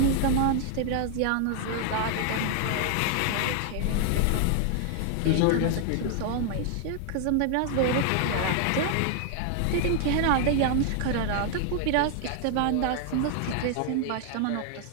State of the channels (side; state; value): both; different; correlation 0.00